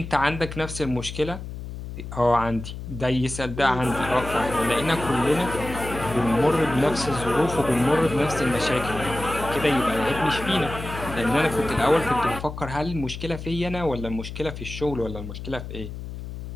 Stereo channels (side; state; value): left; noise; hum, 9 dB below the sound